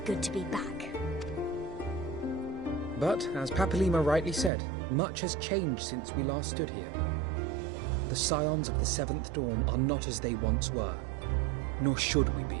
good to be back. But, as Papalima rightly said, much has changed since we last stood here. The Scions of the Seventh Dawn are not as they once were, nor should we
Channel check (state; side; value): drops out; left; at 4.5 s